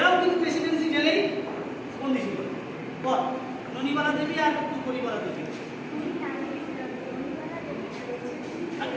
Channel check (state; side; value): identical; both; correlation 1.00